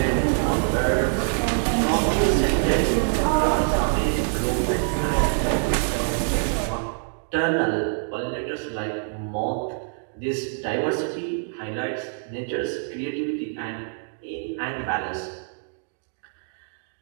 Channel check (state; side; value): silent; left; digital silence